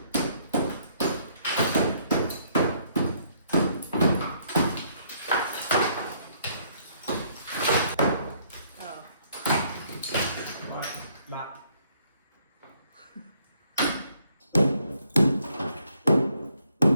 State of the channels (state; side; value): inverted; both; correlation -0.67